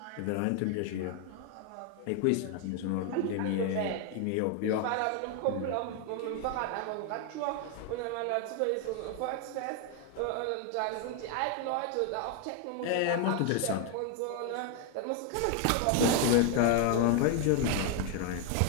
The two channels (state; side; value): different; both; correlation 0.01